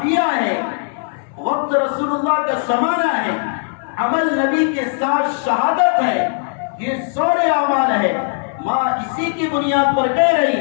ہے، وقت رسول اللہ کا زمانہ ہے، عمل نبی کے ساتھ شہادت ہے، یہ سورے اعمال ہے. ماں اسی کی بنیاد پر کہہ رہی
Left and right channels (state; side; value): silent; right; digital silence